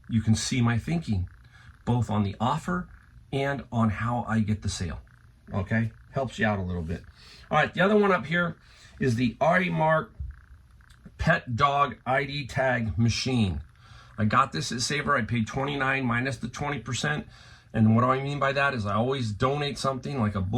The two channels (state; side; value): identical; both; correlation 1.00